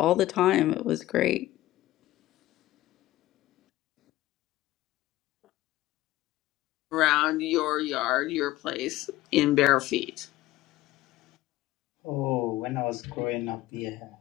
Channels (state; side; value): quieter; right; 16.2 dB